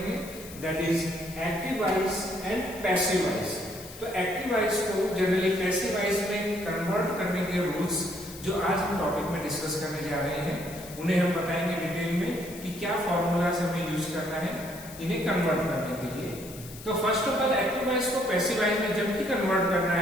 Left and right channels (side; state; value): left; noise; hiss, 16 dB below the sound